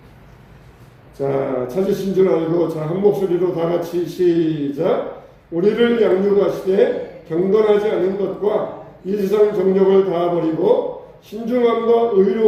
자, 찾으신 줄 알고 자, 한 목소리로 다 같이 시작. 우리를 양육하시되 경건하지 않은 것과 이 세상 정욕을 다 버리고 신중함과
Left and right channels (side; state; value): both; identical; correlation 1.00